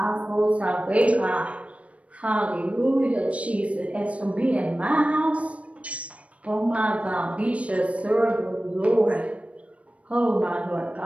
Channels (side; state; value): left; late; 0.064 ms